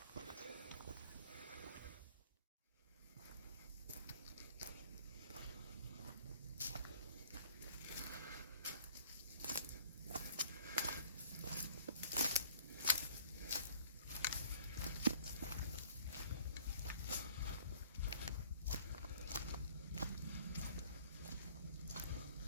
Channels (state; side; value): inverted; both; correlation -0.53